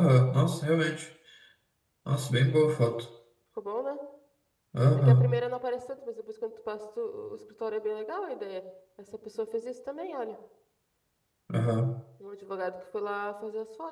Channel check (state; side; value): identical; both; correlation 1.00